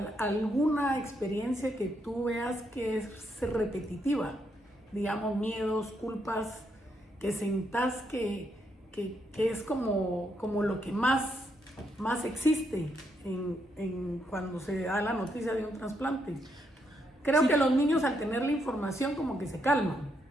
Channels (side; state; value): both; normal; correlation 0.78